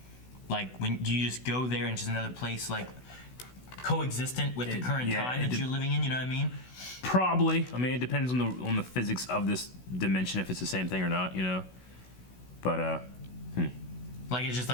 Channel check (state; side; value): late; right; 16 ms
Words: Like, when do you just go there and it's just another place, like coexistent with the current time that you're living in? You know what I mean? Probably. I mean, it depends on the physics of this dimension if it's the same thing or not. You know. But Like it's just